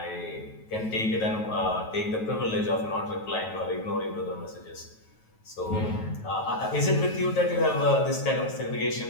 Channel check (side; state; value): right; late; 9.2 ms